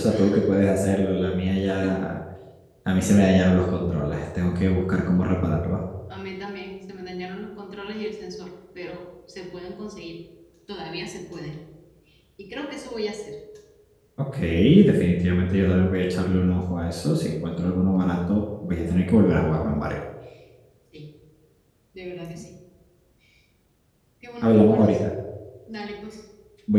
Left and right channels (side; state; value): both; identical; correlation 1.00